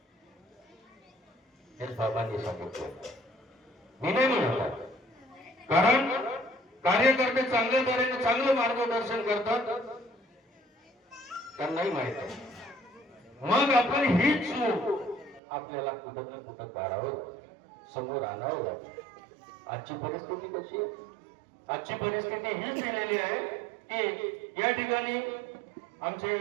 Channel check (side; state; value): left; drops out; at 15.4 s